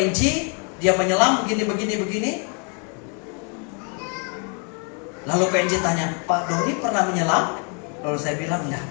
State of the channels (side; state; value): right; quieter; 37.7 dB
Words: dia menyelam begini. Lalu PNJ tanya, Pak Doni pernah menyelam? Lalu saya bilang, enggak.